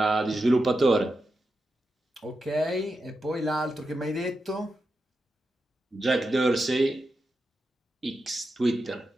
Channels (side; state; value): both; normal; correlation 0.88